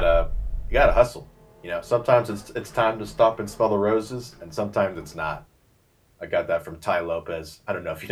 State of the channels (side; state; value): both; identical; correlation 1.00